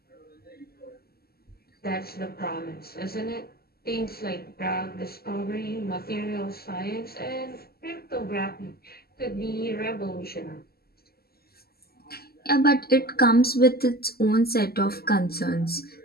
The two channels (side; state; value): right; late; 0.45 ms